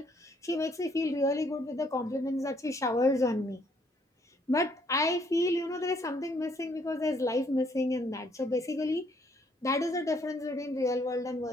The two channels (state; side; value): normal; both; correlation 0.67